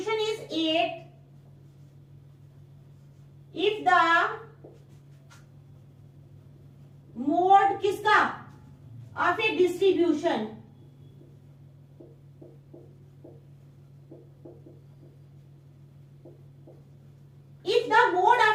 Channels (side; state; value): both; identical; correlation 1.00